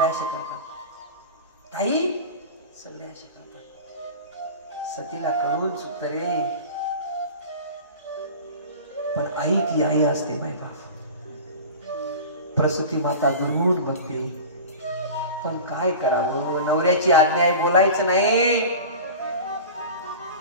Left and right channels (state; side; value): inverted; both; correlation -0.34